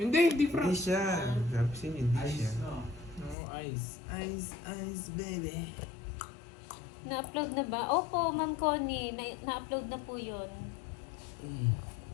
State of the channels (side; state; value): right; drops out; at 3.4 s